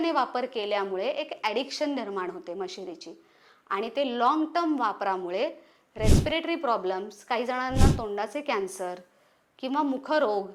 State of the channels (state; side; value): identical; both; correlation 1.00